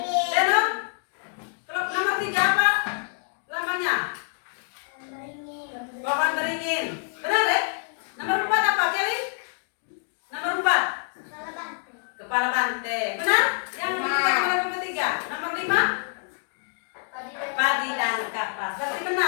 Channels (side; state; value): right; silent; 60 dB below the other